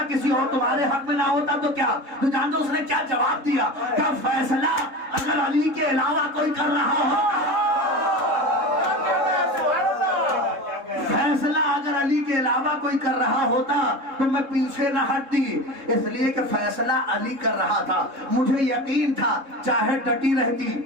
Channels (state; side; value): late; left; 3.7 ms